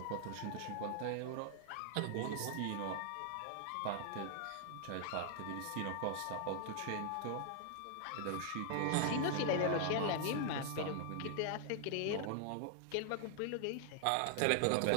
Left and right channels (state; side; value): different; both; correlation 0.00